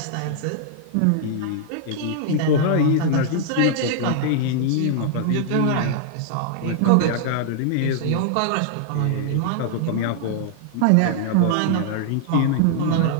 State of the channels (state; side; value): different; both; correlation -0.01